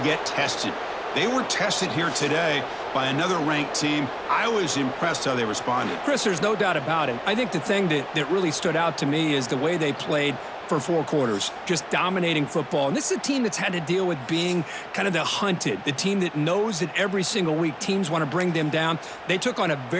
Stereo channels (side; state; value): both; identical; correlation 1.00